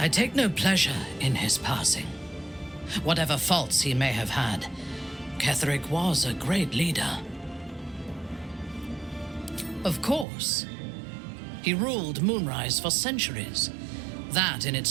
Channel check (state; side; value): drops out; left; at 10.2 s